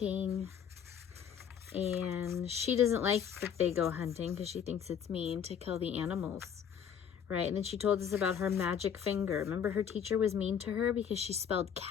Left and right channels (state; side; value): quieter; right; 8.1 dB